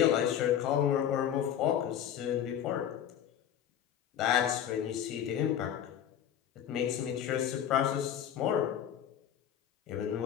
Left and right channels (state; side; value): quieter; right; 9.9 dB